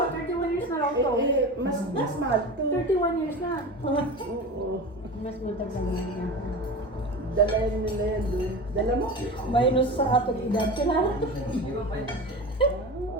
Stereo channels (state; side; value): normal; both; correlation 0.30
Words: 31 years na lang to. Mas mahal. 31 years na. Oo. Mas matagal na niya. Dalayan nila yan doon. Dala mo? Minus sa atong edad. Kailangan.